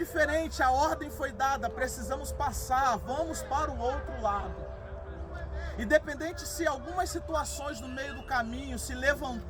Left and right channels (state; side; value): identical; both; correlation 1.00